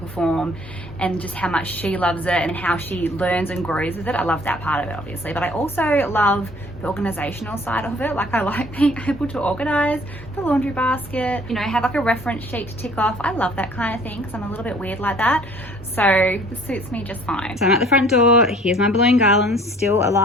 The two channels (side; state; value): both; normal; correlation 0.55